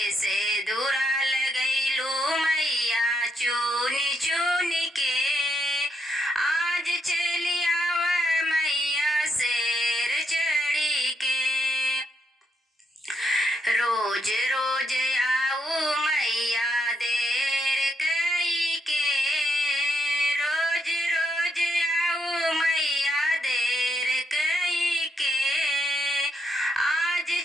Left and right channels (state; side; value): normal; both; correlation 0.77